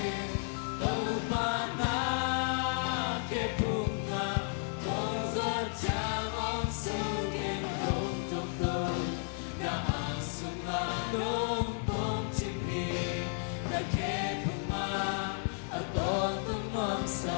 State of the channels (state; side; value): silent; right; 56 dB below the other